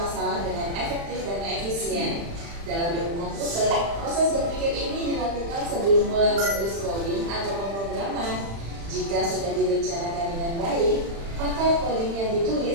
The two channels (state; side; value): late; left; 35 ms